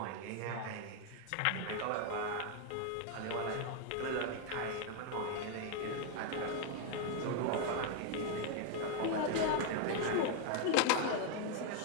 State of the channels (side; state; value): both; different; correlation 0.01